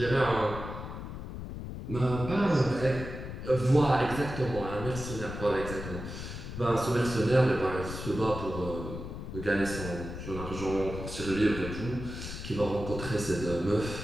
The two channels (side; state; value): left; noise; rumble, 8 dB below the sound